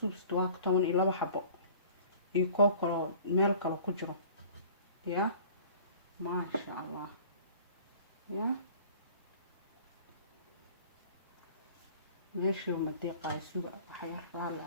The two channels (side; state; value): both; inverted; correlation -0.47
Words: waa 12 xabo iyo koob kale meel kale ku jiro ya maasha allah ya meesha ma deeqay suuqa waxa yar raal